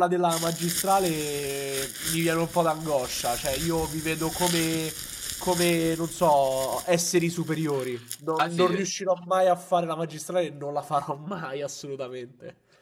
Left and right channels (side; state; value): both; identical; correlation 1.00